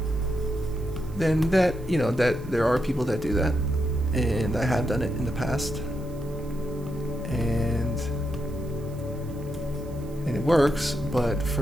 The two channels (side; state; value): right; noise; hiss, 25 dB below the sound